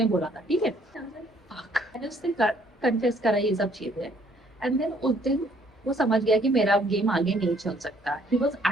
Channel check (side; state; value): both; normal; correlation 0.63